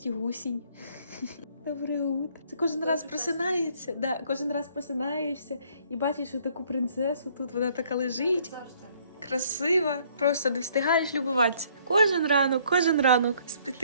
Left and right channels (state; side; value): inverted; both; correlation -0.62